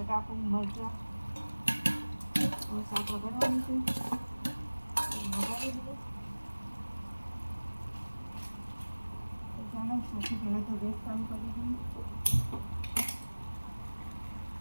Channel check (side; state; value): both; inverted; correlation -1.00